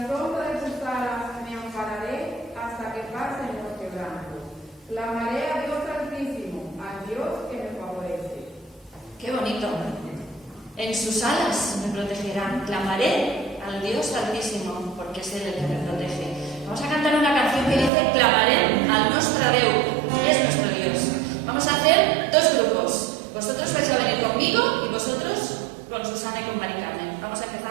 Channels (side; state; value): left; drops out; at 17.9 s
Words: sombra de sus alas me ampararé hasta que pasen los quebrantos. Clamaré a Dios Altísimo, al Dios que me favorece. ¡Qué bonito! En sus alas me protegerán. Clamaré al Dios Altísimo, porque es Él el que me protege. Vamos a cantar una canción que dice: clamaré al nostre Déu, es nuestro Dios. Vamos a hacer dos grupos. Vosotros vais a venir conmigo y vosotros con Susana y con Mari Carmen. Vamos a